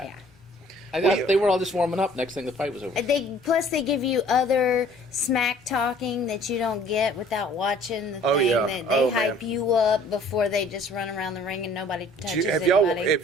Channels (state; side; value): normal; both; correlation 0.54